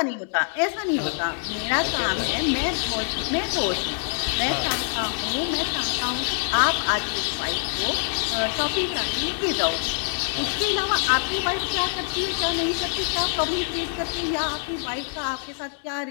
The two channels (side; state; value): right; silent; 62 dB below the other